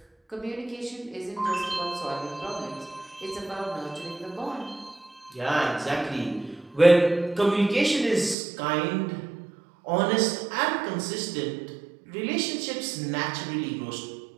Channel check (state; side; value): drops out; left; at 8.3 s